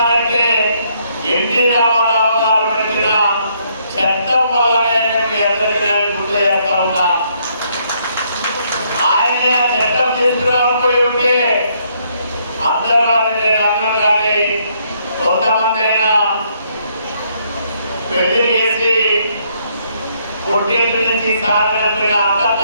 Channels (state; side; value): inverted; both; correlation -0.71